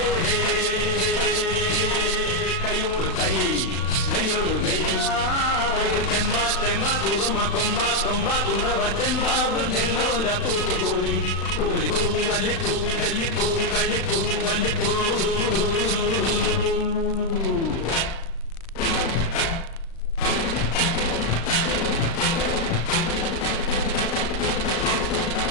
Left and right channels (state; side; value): late; right; 36 ms